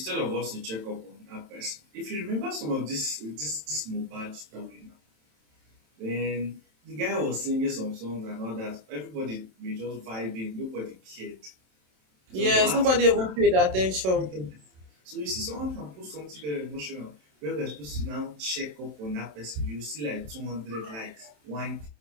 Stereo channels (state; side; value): late; left; 27 ms